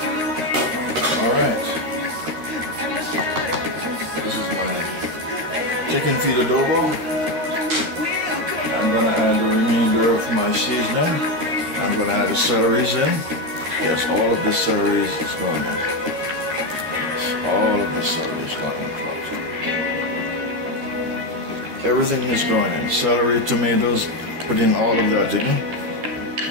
Alright. Chicken feet adobo. I'm going to add the remainder of my seasoning. I'm going to add the celeries in. Yes, all of the celeries is going in. Yes, all of the celery is going in. Everything is going in. Celery, tomatoes, put in all of that in.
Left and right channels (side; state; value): left; late; 13 ms